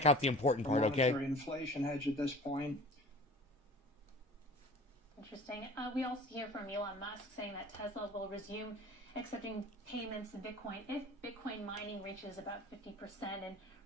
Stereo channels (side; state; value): both; normal; correlation 0.42